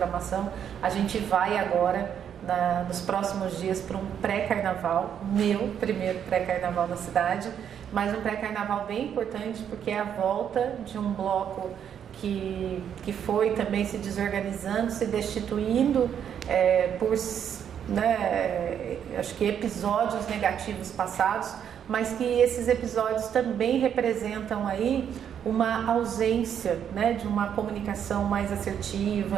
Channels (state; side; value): quieter; left; 8.7 dB